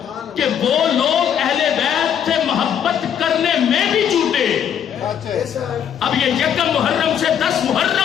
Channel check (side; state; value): right; quieter; 8.8 dB